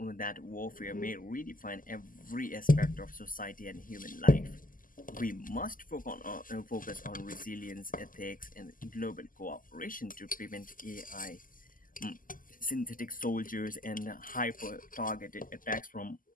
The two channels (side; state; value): right; late; 0.40 ms